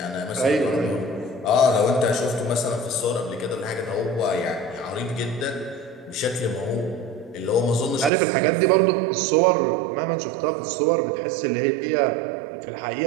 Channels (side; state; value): left; drops out; at 8.1 s